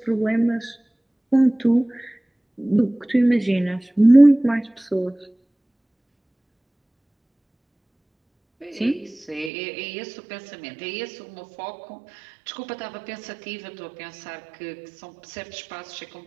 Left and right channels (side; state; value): left; drops out; at 9.5 s